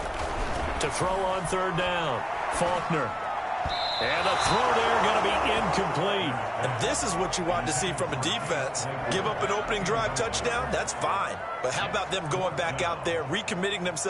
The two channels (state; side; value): identical; both; correlation 1.00